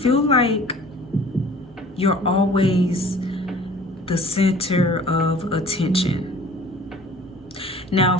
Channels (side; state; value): both; normal; correlation 0.48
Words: like you're always the center of attention. Now,